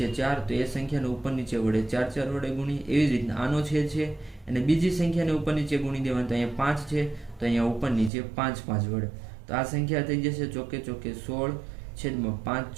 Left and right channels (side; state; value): left; drops out; at 8.1 s